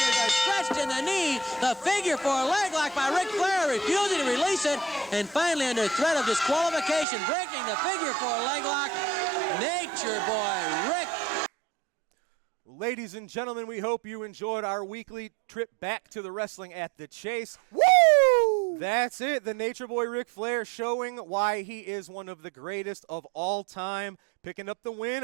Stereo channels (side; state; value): left; drops out; at 7.1 s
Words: are stretched in the knee. The figure four leg lock by Ric Flair, refusing to release it, and finally under threat of disqualification, breaking the figure four leg lock. Nature Boy Ric. Ladies and gentlemen, we hope you enjoyed our weekly trip back to the Wrestling at the Chase. Woo! That's it. The Nature Boy Ric Flair showing why he is one of the greatest of all time, picking up the